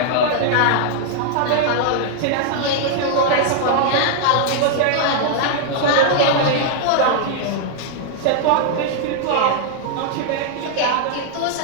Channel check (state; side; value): different; both; correlation 0.00